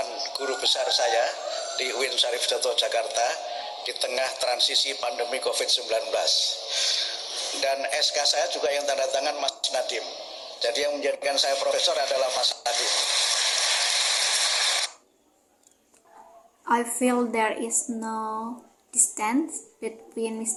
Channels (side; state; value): both; identical; correlation 1.00